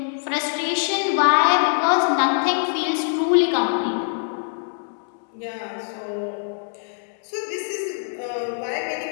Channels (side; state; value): right; silent; 63 dB below the other